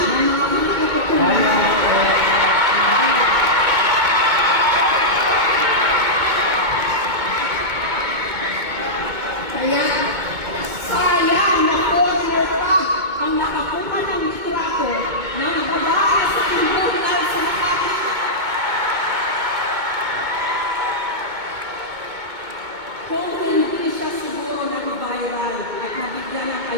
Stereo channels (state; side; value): late; left; 2.2 ms